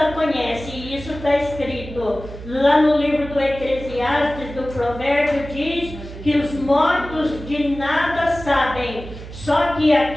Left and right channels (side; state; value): right; noise; hum, 13 dB below the sound